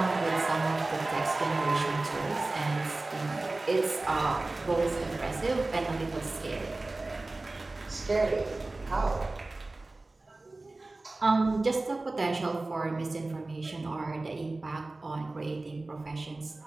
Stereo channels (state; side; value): quieter; left; 3.1 dB